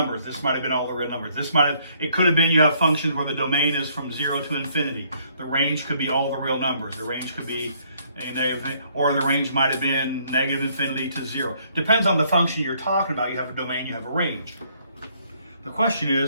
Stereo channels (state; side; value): inverted; both; correlation -0.66